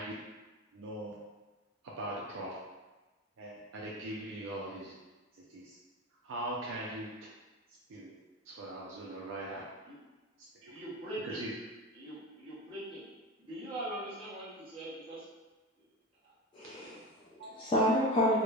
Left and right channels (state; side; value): normal; both; correlation 0.25